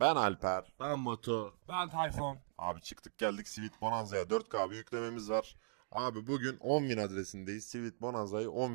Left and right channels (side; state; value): left; silent; digital silence